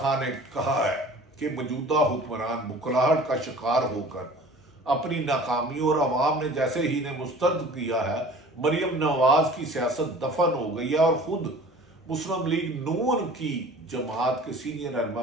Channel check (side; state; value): both; normal; correlation 0.45